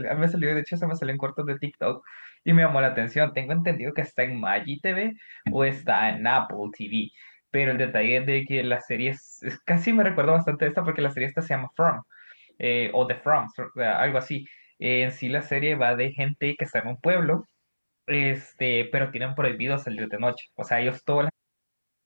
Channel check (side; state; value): both; inverted; correlation -1.00